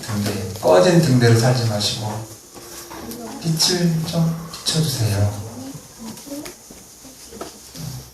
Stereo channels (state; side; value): identical; both; correlation 1.00